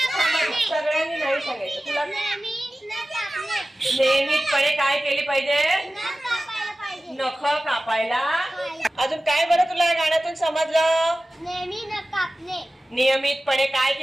सगळ्यांनी नाही सांगायचं। तुला नियमितपणे काय केली पाहिजे? नख कापायला। अजून काय बरं तुला या गाण्यातून समजलं? नेहमी नख कापणे। नियमितपणे काय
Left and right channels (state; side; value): normal; both; correlation 0.95